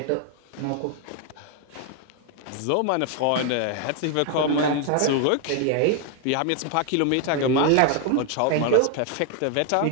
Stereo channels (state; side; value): different; both; correlation 0.00